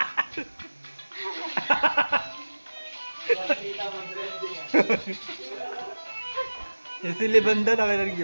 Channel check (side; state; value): both; inverted; correlation -1.00